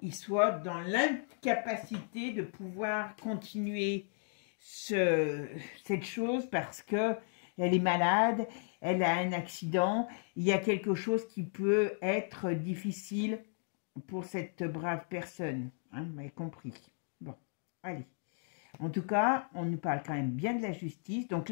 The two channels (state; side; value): silent; right; 55 dB below the other